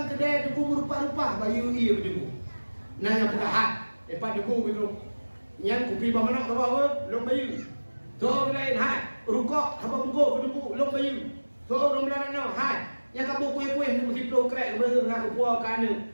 kedai tungku merupa-rupa bayu iya kedengku. Nah yang buka hat, depan dengku gitu. Yang kupi ba manok tahu long bayu. So lain hat, rukok apa bungko kedengku long bayu. So long laran no hat. Yang kabu kuih-kuih mesti pro krek bereng ngak puak kana.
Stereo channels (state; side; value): inverted; both; correlation -1.00